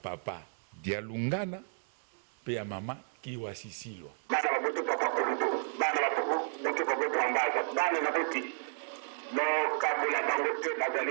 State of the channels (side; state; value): left; silent; 56 dB below the other